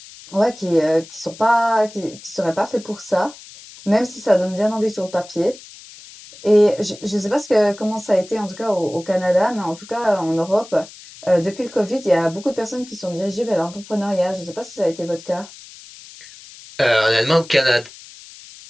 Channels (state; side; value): noise; left; hiss, 19 dB below the sound